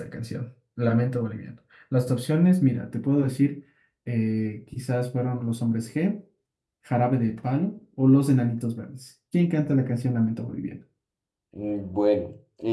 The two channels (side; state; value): both; identical; correlation 1.00